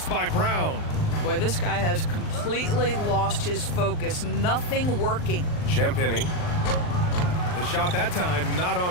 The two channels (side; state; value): right; late; 39 ms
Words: by Brown. Boy, this guy has completely lost his focus. Nothing working. Champagnie. The shot that time not